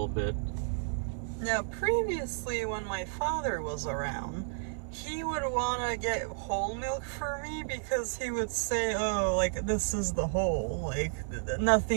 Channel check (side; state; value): left; silent; digital silence